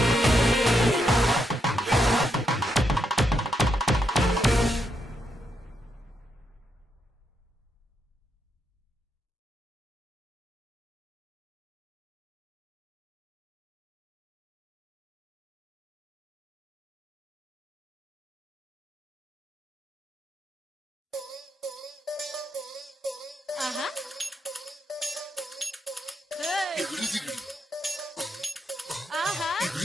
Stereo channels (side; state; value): both; normal; correlation 0.80